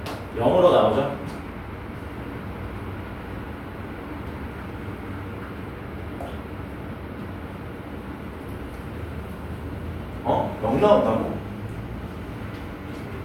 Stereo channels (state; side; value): identical; both; correlation 1.00